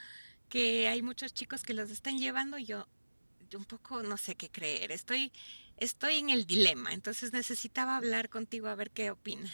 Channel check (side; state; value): both; inverted; correlation -1.00